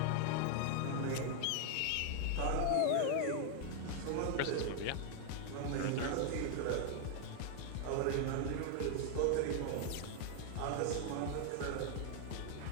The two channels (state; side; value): different; both; correlation 0.00